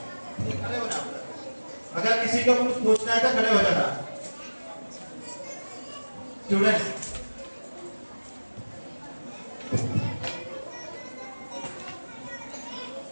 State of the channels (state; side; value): inverted; both; correlation -1.00